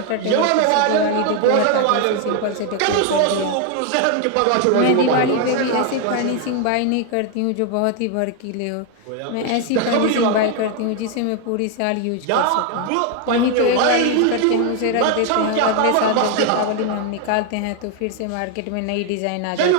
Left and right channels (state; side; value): different; both; correlation 0.01